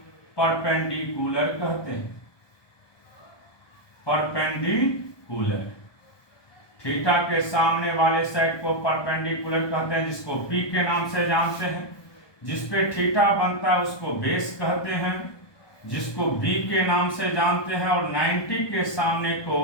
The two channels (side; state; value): right; late; 1.2 ms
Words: परपेंडिकुलर कहते हैं, परपेंडिकुलर। थीटा के सामने वाले साइड को परपेंडिकुलर कहते हैं, जिसको P के नाम से जानते हैं। जिस पे थीटा बनता है उसको बेस कहते हैं, जिसको B के नाम से जानते हैं। और 90 के सामने को